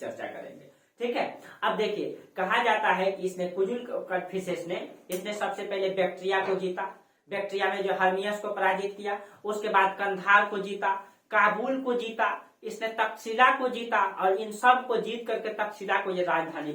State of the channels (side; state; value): both; identical; correlation 1.00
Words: करेंगे, ठीक है। अब देखिए कहा जाता है कि इसने कुजुल कड़फिसेस ने इसने सबसे पहले बैक्ट्रिया को जीता, बैक्ट्रिया में जो हर्मियस को पराजित किया, उसके बाद कंधार को जीता, काबुल को जीता, इसने तक्षशिला को जीता और इन सब को जीत करके तक्षशिला को ये राजधानी